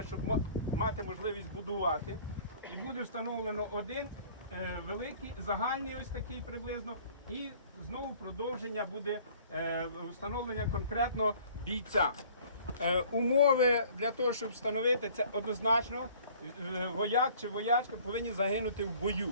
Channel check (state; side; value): inverted; both; correlation -0.52